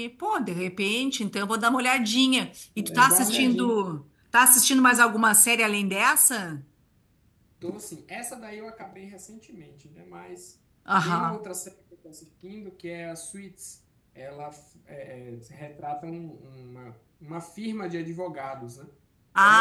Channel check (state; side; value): identical; both; correlation 1.00